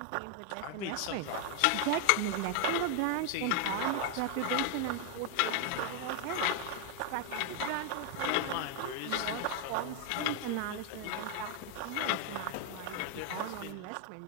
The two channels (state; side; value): different; both; correlation 0.00